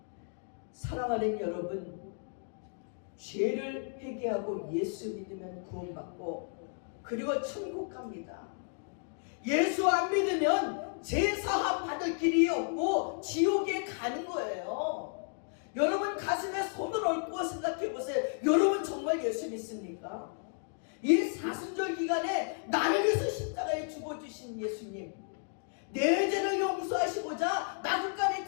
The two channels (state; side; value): silent; right; 56 dB below the other